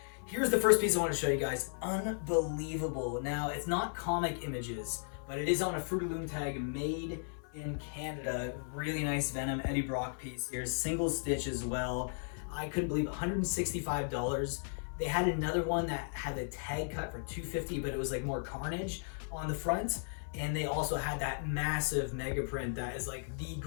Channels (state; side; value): silent; right; 54 dB below the other